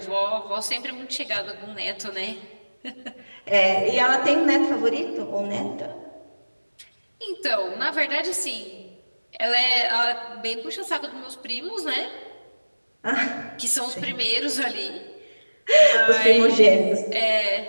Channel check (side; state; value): both; inverted; correlation -1.00